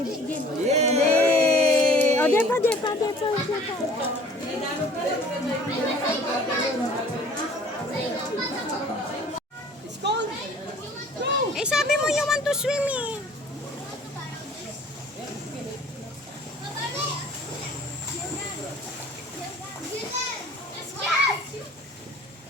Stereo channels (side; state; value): both; normal; correlation 0.51